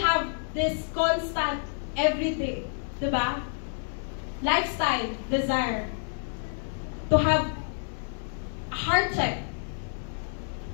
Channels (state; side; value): silent; right; 59 dB below the other